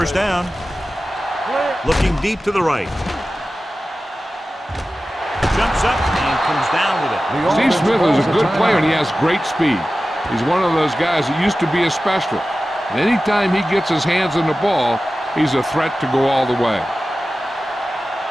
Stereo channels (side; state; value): both; normal; correlation 0.95